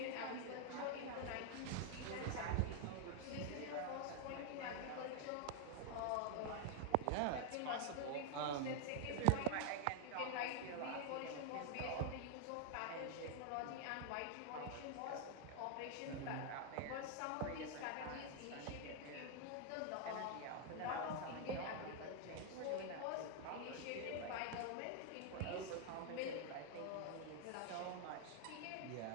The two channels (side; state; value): both; different; correlation 0.00